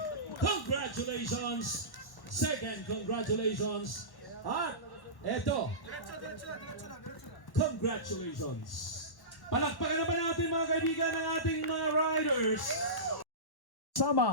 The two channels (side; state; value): right; late; 1.1 ms